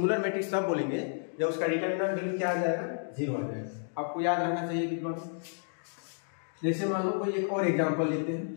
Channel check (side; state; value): right; silent; digital silence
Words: मैट्रिक्स तब बोलेंगे जब उसका डिटरमिनेंट वैल्यू क्या आ जाएगा 0 आ जाएगा। आपको याद रखना चाहिए विद्वान। जैसे मान लो कोई एक और एग्जांपल लेते हैं।